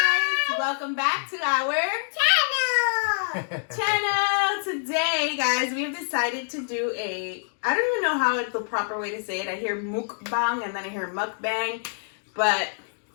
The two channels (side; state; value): right; silent; digital silence